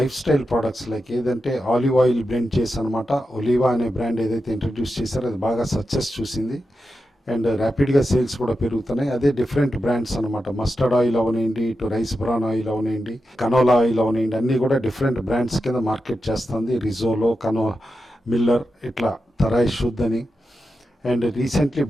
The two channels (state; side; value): normal; both; correlation 0.89